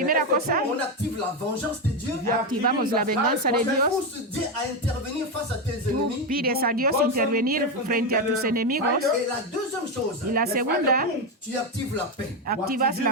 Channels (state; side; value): normal; both; correlation 0.09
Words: cosa, on active la vengeance de Dieu. activamos la venganza de Tu Dios. pousses Dieu à intervenir face à tes Tú ennemis. pides a Dios intervenir frente a tus enemigos. Et la deuxième chose, Y la segunda, tu actives la paix. activas